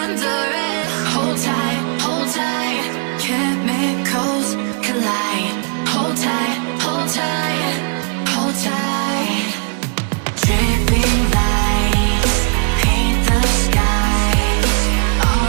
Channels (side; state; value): left; quieter; 38.9 dB